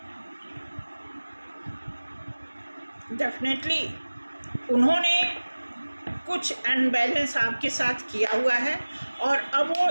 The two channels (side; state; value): both; inverted; correlation -1.00